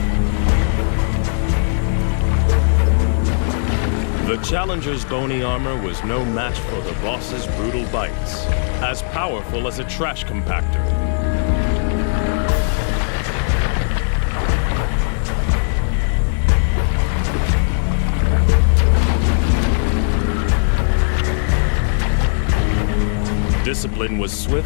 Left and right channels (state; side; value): silent; right; digital silence